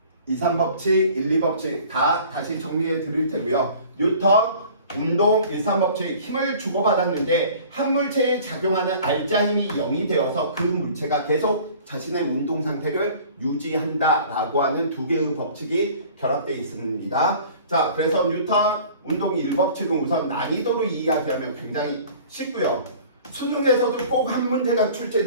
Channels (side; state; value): both; inverted; correlation -0.47